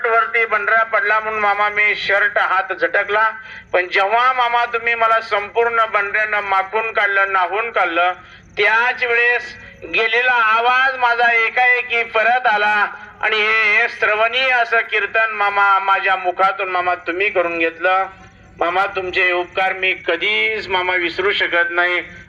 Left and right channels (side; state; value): both; identical; correlation 1.00